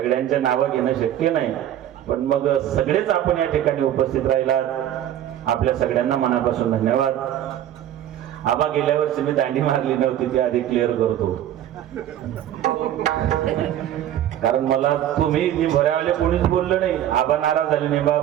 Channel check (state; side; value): quieter; left; 11.5 dB